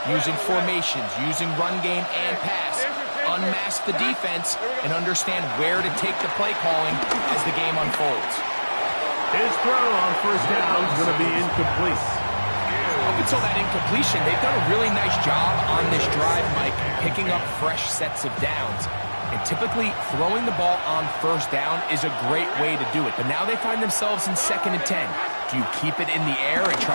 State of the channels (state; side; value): inverted; both; correlation -1.00